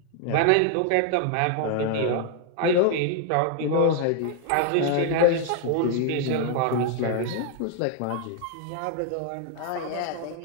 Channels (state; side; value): different; both; correlation 0.00